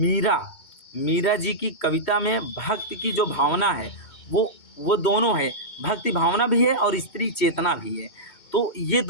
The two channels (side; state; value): right; late; 2.2 ms